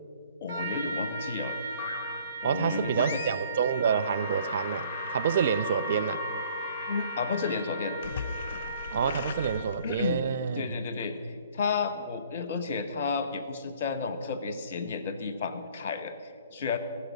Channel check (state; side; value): inverted; both; correlation -0.56